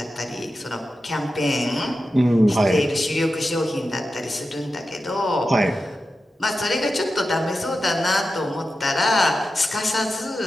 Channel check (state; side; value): normal; both; correlation 0.91